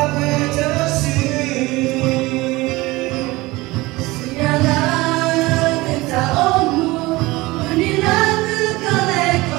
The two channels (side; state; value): left; quieter; 20.8 dB